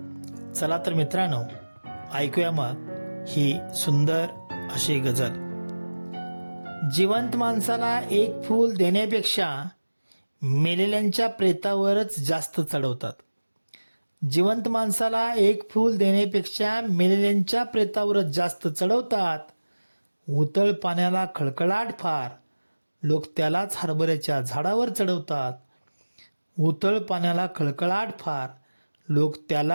चला तर मित्रांनो, ऐकूया मग ही सुंदर अशी गझल. जिवंत माणसाला एक फूल देण्यापेक्षा मेलेल्यांच्या प्रेतावरच जास्त चढवतात. जिवंत माणसाला एक फूल देण्यापेक्षा मेलेल्यांच्या प्रेतावरच जास्त चढवतात. उतळ पाण्याला खळखळाट फार, लोक त्यालाच हरभऱ्याच्या झाडावर चढवतात. उतळ पाण्याला खळखळाट फार, लोक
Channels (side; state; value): both; inverted; correlation -1.00